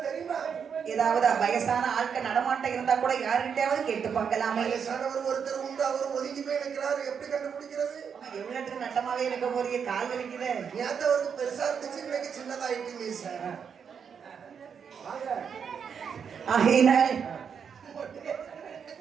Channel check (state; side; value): quieter; left; 6.9 dB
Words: தெரியுமா? ஏதாவது வயசான ஆட்கள் நடமாட்டம் இருந்தா கூட யாருக்கிட்டையாவது கேட்டு பார்க்கலாமே. வயசானவர் ஒருத்தர் உண்டு, அவர் ஒதுங்கி போய் நிற்கிறாரு. எப்படி கண்டுபிடிக்கிறது? எவ்வளவு நட்டமாவே இருக்க போறீங்க, கால் வலிக்குது. நேத்து அவருக்கு பெருசா இருந்துச்சு, இன்னைக்கு சின்னதாயிட்டு சார். ஆகையினால்